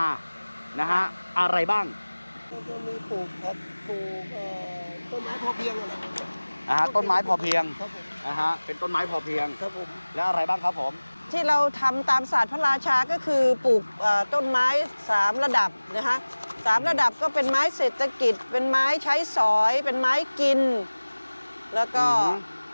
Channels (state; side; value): inverted; both; correlation -1.00